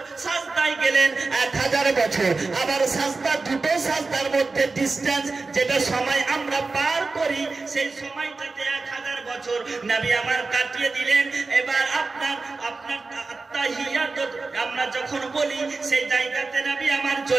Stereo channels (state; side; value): quieter; left; 3.9 dB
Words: সাজদায় গেলেন 1000 বছর। আবার সাজদা, দুটো সাজদার মধ্যে ডিসটেন্স, যেটা সময় আমরা পার করি, সেই সময়টাতে 1000 বছর নবী আমার কাটিয়ে দিলেন। এবার আপনার আত্তাহিয়াত আমরা যখন বলি, সেই জায়গাতে নবী আমার